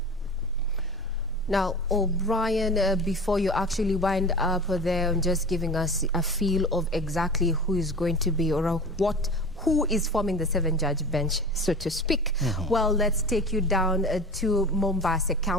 Now, O'Brien, before you actually wind up there, just giving us a feel of exactly who is going to be or who is forming the 7-judge bench, so to speak. Well, let's take you down to Mombasa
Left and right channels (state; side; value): normal; both; correlation 0.34